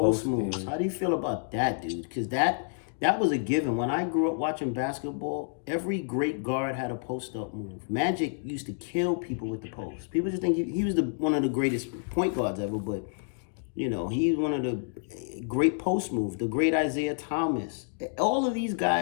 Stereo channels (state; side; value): silent; right; digital silence